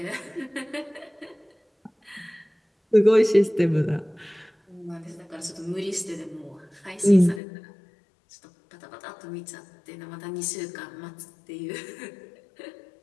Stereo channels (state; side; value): drops out; right; at 7.4 s